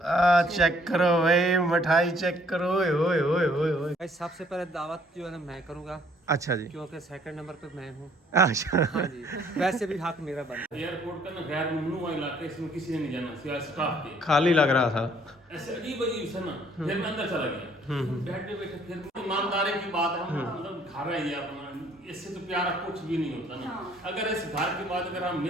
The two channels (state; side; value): normal; both; correlation 0.62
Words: Check करो भाई, मिठाई चेक करो। ओए ओए ओए ओए ओए। भाई सबसे पहले दावत जो है ना मैं करूँगा, अच्छा जी। क्योंकि सेकंड नंबर पे मैं हूँ। अच्छा। हाँ जी, वैसे भी हक मेरा बनता है। एयरपोर्ट का ना गैर ममनू इलाका, इसमें किसी ने नहीं जाना सिवाय स्टाफ के। खाली लग रहा था। ऐसे अजीब अजीब सा ना, फिर मैं अंदर चला गया। बैठे बैठे फिर ईमानदारी की बात है, हम मतलब घर है ये अपना, इससे तो प्यारा कुछ भी नहीं होता ना। अगर इस घर के बाद अगर हम